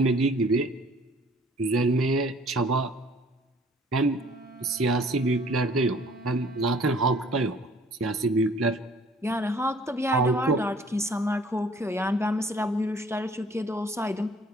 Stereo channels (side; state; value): both; normal; correlation 0.55